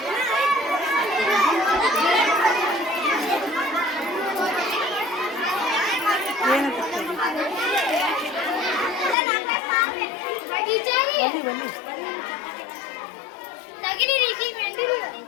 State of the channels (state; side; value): drops out; right; at 9.2 s